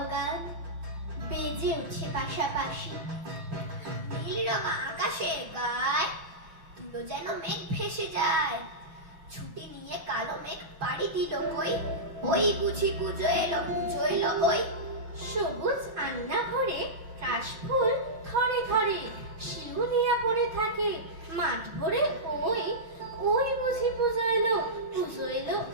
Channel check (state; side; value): late; left; 6.3 ms